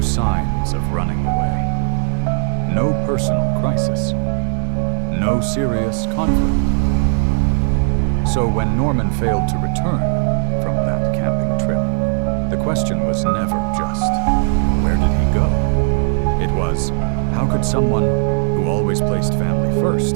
signs of running away, no personal crisis, no serious conflict. So when Norman failed to return from that camping trip, the question was never just, where did he go? It was, how could someone who always placed family first,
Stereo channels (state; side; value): silent; left; 67 dB below the other